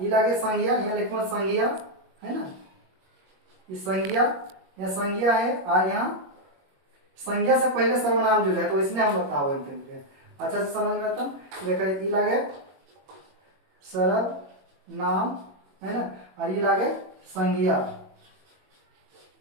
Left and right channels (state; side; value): late; left; 21 ms